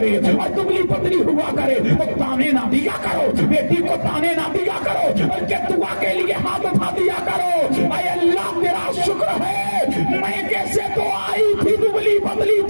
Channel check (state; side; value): inverted; both; correlation -1.00